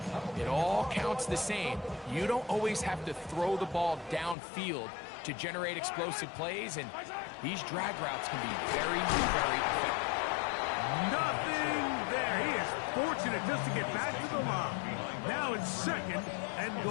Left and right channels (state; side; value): drops out; right; at 4.4 s